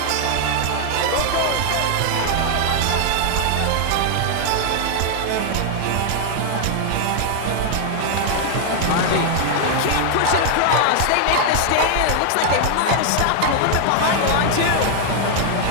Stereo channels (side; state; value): both; different; correlation 0.00